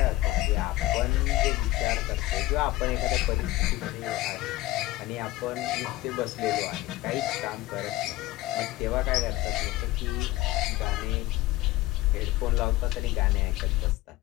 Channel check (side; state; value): right; quieter; 17.7 dB